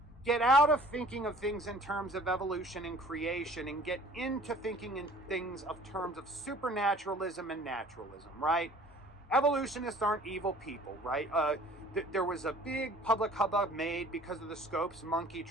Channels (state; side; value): normal; both; correlation 0.50